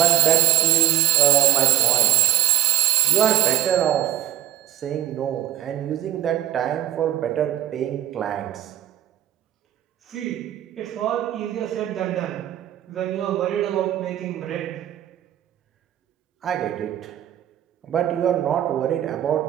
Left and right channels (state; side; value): quieter; left; 12.5 dB